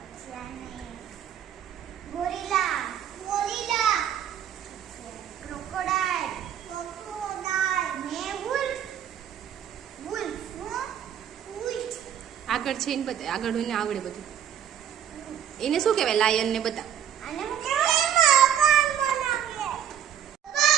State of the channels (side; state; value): left; quieter; 9.4 dB